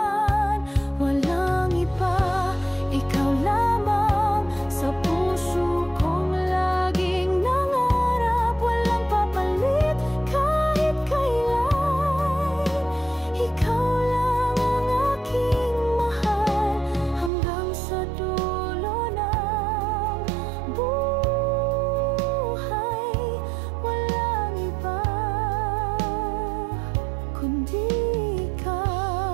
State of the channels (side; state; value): left; drops out; at 17.3 s